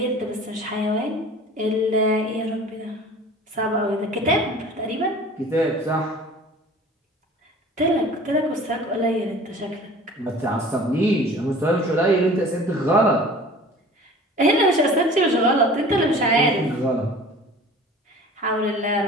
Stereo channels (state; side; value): normal; both; correlation 0.44